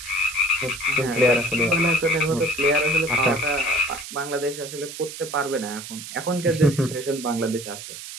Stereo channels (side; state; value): right; noise; hiss, 11 dB below the sound